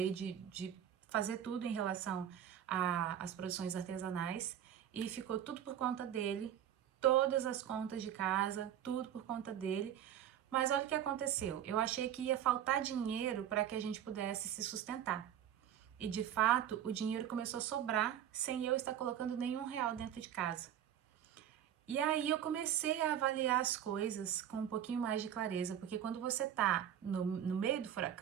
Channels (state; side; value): quieter; left; 10.2 dB